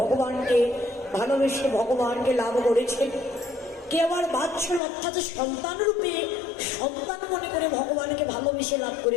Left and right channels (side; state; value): right; drops out; at 4.8 s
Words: ভালোবেসে ভগবানকে লাভ করেছেন, কেউ আবার বাৎসল্য অর্থাৎ সন্তান রূপে সন্তান মনে করে ভগবানকে ভালোবেসে লাভ